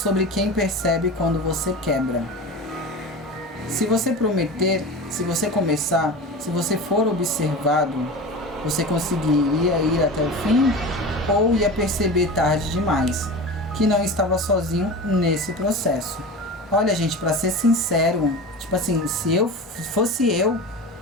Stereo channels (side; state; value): both; normal; correlation 0.30